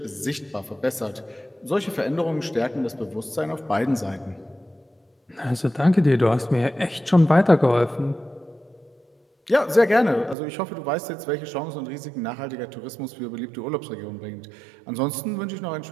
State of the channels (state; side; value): drops out; left; at 10.4 s